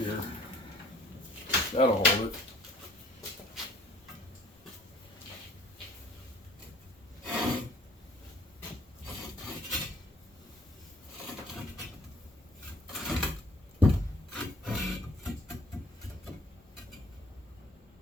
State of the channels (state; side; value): normal; both; correlation 0.55